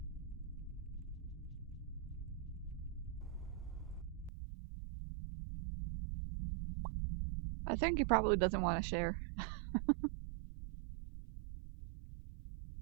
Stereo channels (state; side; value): drops out; left; at 4.3 s